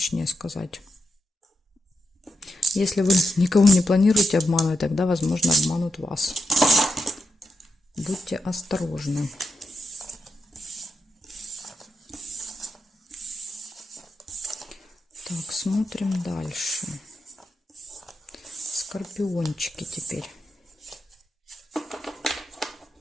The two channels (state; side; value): normal; both; correlation 0.85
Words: сказать. Если вы никого не планируете обманывать, тогда, возможно, обманут вас. Будьте осторожны. Так, смотрим дальше. Скорпиончики теперь.